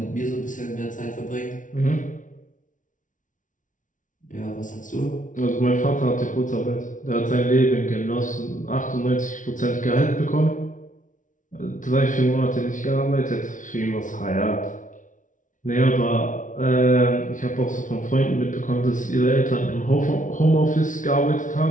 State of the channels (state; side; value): late; right; 0.37 ms